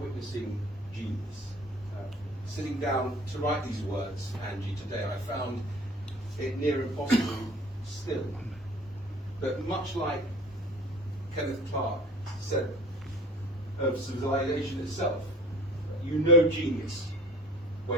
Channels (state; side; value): normal; both; correlation 0.46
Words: genius. Sitting down to write these words, Angie, today, I found it near impossible still. But much like Kenneth Clark said of civilization itself, you know genius